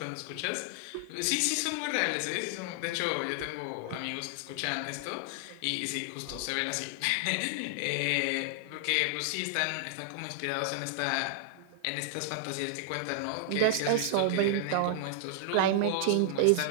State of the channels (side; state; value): both; different; correlation -0.01